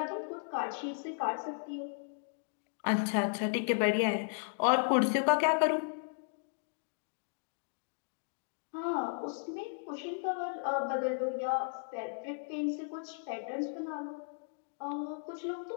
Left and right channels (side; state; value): right; silent; digital silence